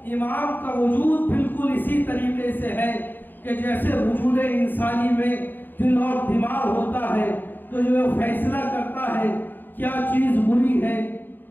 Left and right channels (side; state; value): right; late; 0.092 ms